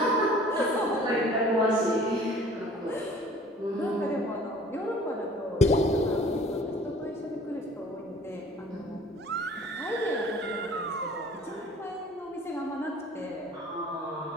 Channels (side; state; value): both; normal; correlation 0.50